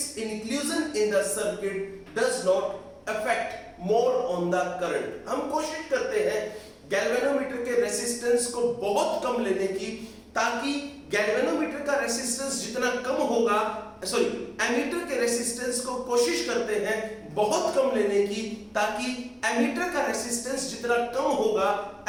inclusion in the circuit does not affect more on the current। हम कोशिश करते हैं गैल्वेनोमीटर के रेसिस्टेंस को बहुत कम लेने की, ताकि गैल्वेनोमीटर का रेसिस्टेंस जितना कम होगा, एमीटर के रेसिस्टेंस को कोशिश करते हैं बहुत कम लेने की, ताकि एमीटर का रेसिस्टेंस जितना कम होगा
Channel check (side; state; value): both; identical; correlation 1.00